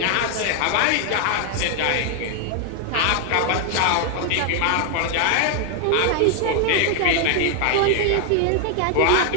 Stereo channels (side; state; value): both; different; correlation 0.00